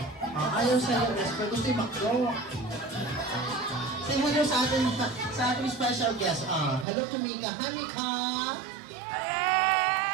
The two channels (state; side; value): drops out; left; at 6.9 s